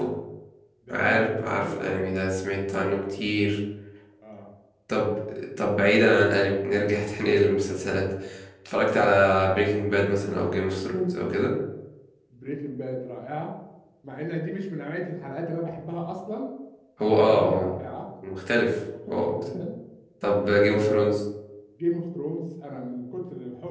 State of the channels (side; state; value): both; identical; correlation 1.00